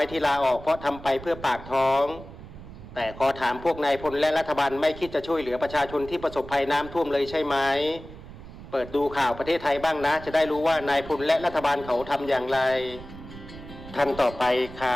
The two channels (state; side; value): noise; right; rumble, 15 dB below the sound